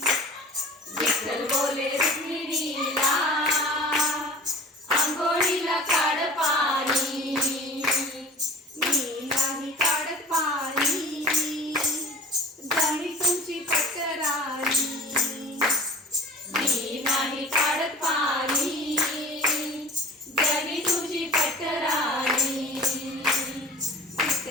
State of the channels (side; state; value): both; normal; correlation 0.41